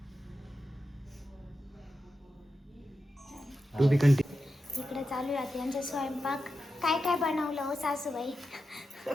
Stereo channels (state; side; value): normal; both; correlation 0.90